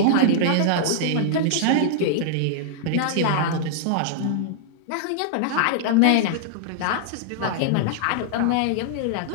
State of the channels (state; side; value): different; both; correlation -0.01